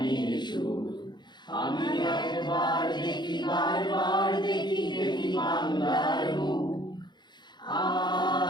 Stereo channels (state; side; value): late; right; 0.21 ms